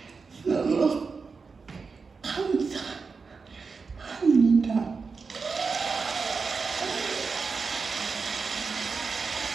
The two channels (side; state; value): left; quieter; 4.8 dB